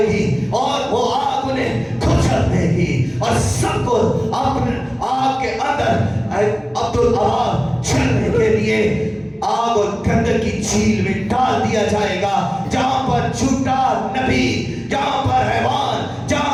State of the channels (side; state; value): both; identical; correlation 1.00